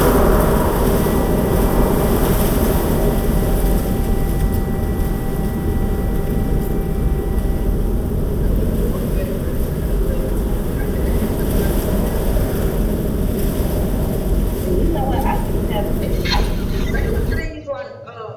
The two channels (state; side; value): identical; both; correlation 1.00